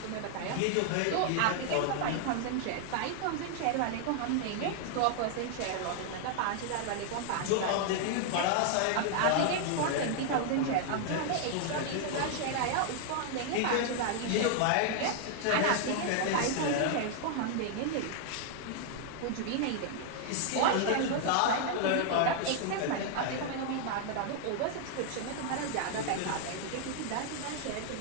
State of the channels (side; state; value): both; different; correlation 0.00